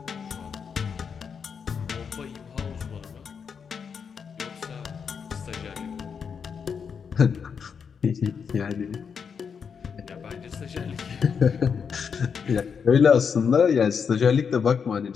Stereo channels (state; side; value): quieter; right; 6.4 dB